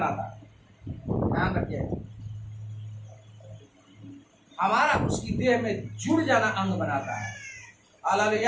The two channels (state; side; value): identical; both; correlation 1.00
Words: ध्यान रखिए। हमारा उसकी देह में जुड़ जाना अंग बनाता है।